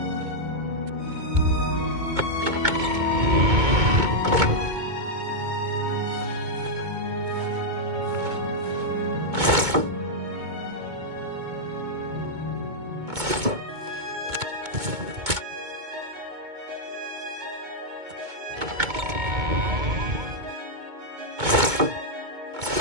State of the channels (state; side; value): late; left; 2.2 ms